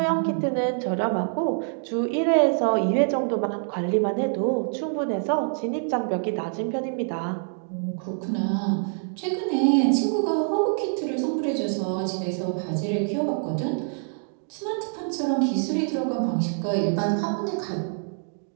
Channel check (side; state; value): left; silent; 61 dB below the other